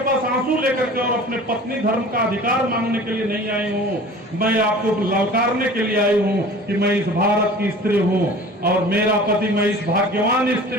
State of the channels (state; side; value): normal; both; correlation 0.42